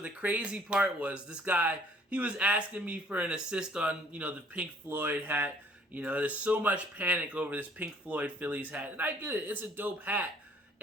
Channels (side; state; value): both; normal; correlation 0.59